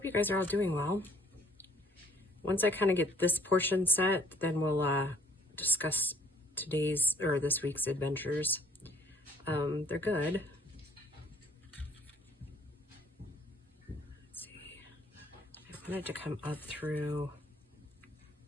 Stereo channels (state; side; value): normal; both; correlation 0.57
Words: you guys are all doing well. Once I kind of get this portion set, then we'll discuss today's or this week's adventures. They're good. Let's see. I wanted to come up through.